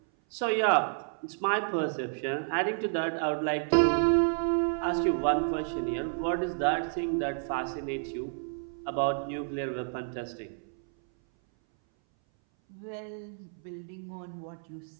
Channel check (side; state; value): left; silent; 58 dB below the other